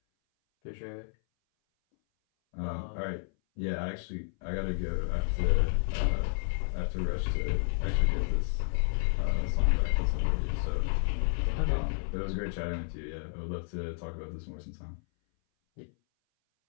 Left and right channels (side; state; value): right; silent; 57 dB below the other